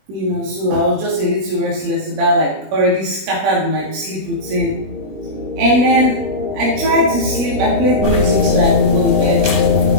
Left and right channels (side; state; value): left; late; 21 ms